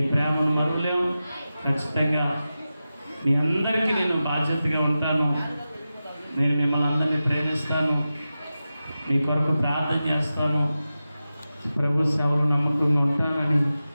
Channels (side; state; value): both; inverted; correlation -0.93